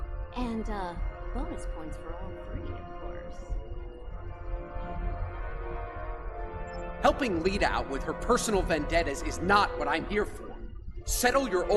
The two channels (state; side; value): identical; both; correlation 1.00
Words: And, bonus points for all three, of course. Helping Lita out with her personal vendettas is not what I'm here for. Settle your